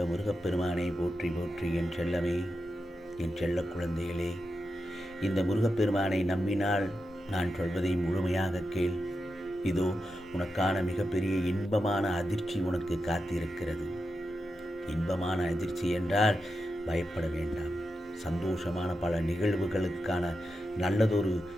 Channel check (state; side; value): normal; both; correlation 0.89